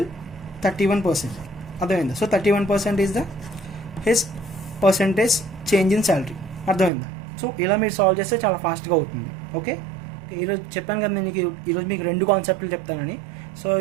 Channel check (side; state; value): left; drops out; at 6.9 s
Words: 31%. అర్థమైందా? So 31% is the his percentage change in salary. అర్థమైందా? సో ఇలా మీరు సాల్వ్ చేస్తే చాలా ఫాస్ట్గా అవుతుంది. ఓకే, ఈరోజు చెప్పాను కదా నేను ఈరోజు మీకు 2 కాన్సెప్ట్లు చెప్తానని. సో